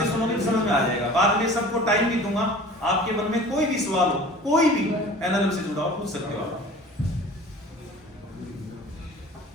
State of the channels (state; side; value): normal; both; correlation 0.43